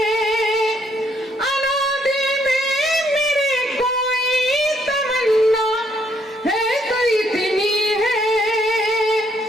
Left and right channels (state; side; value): normal; both; correlation 0.70